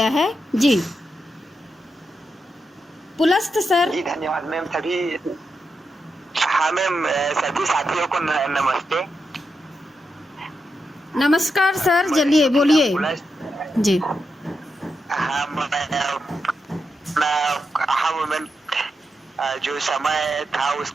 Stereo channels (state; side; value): normal; both; correlation 0.86